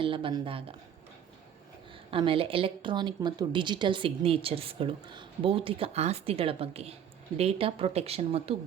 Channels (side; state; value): left; quieter; 9.1 dB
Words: ಎಲ್ಲ ಬಂದಾಗ, ಆಮೇಲೆ ಎಲೆಕ್ಟ್ರಾನಿಕ್ ಮತ್ತು ಡಿಜಿಟಲ್ ಸಿಗ್ನೇಚರ್ಸ್ಗಳು, ಭೌತಿಕ ಆಸ್ತಿಗಳ ಬಗ್ಗೆ, ಡೇಟಾ ಪ್ರೊಟೆಕ್ಷನ್ ಮತ್ತು